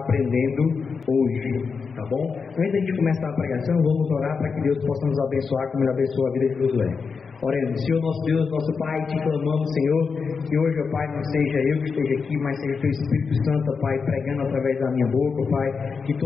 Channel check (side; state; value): right; quieter; 5.3 dB